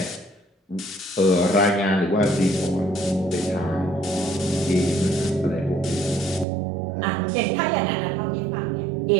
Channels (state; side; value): drops out; left; at 6.5 s